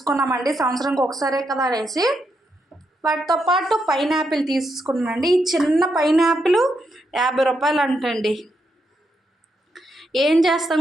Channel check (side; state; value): both; normal; correlation 0.81